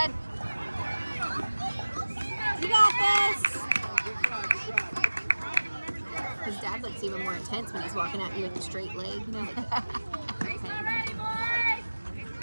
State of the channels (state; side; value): inverted; both; correlation -1.00